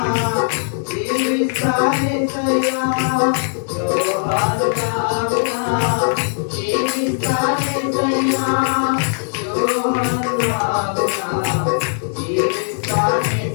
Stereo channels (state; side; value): silent; right; digital silence